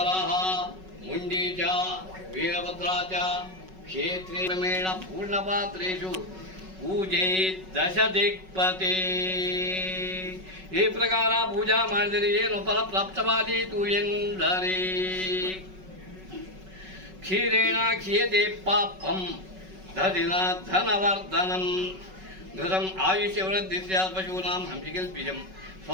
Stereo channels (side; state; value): left; late; 5.3 ms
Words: ಮುಂಡೀಚ, ವೀರಭದ್ರಾಚ, ಕ್ಷೇತ್ರೇ ಕ್ರಮೇಣ ಪೂರ್ಣಪಾತ್ರೇಷು ಪೂಜೆ ದಶ ದಿಕ್ಪತಿ. ಈ ಪ್ರಕಾರ ಪೂಜಾ ಮಾಡಿದರೆ ಏನು ಫಲ ಪ್ರಾಪ್ತವಾದೀತು ಎಂದರೆ ಕ್ಷೀರೇಣ ಕ್ಷೀಯತೆ ಪಾಪಂ ದಧಿನ ಧನವರ್ಧನಂ ಘೃತಂ ಆಯುಷ್ಯವೃದ್ಧಿ ಸ್ಯಾತ್ ಪಶೂನಾಂ ಹಂಸಿಕಲ್ಪಿಜಂ